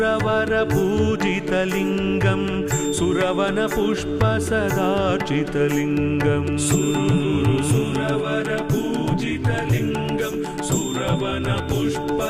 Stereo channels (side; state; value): both; identical; correlation 1.00